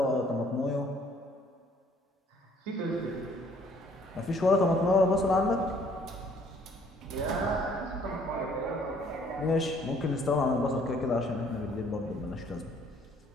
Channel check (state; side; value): normal; both; correlation 0.61